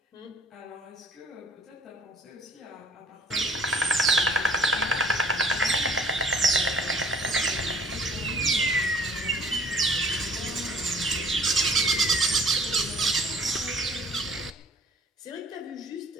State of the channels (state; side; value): normal; both; correlation 0.54